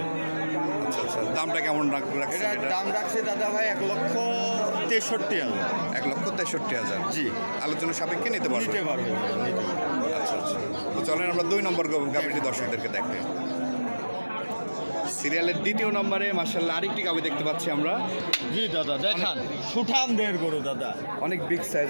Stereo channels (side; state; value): both; inverted; correlation -1.00